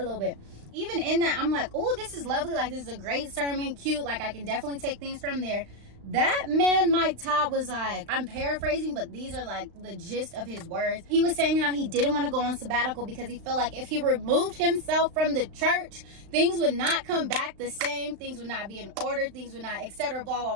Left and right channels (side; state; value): left; late; 35 ms